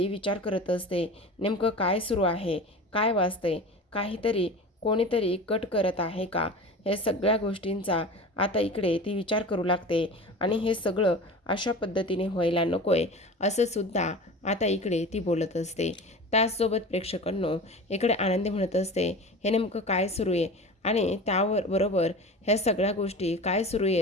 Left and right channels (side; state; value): both; normal; correlation 0.34